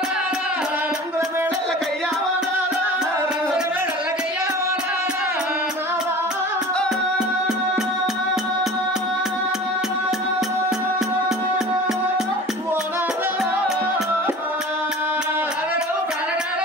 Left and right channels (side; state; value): both; normal; correlation 0.39